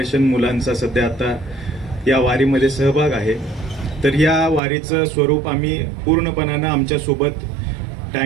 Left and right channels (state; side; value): drops out; left; at 4.6 s